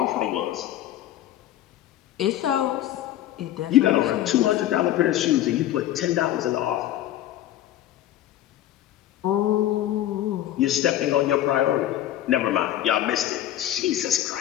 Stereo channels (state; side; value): quieter; right; 12.8 dB